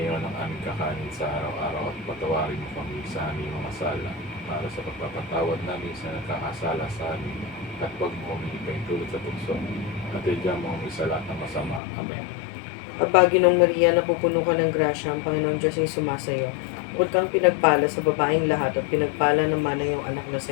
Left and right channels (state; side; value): drops out; right; at 11.8 s